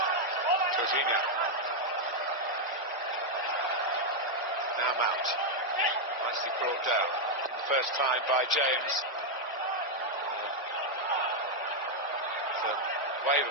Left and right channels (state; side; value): normal; both; correlation 0.00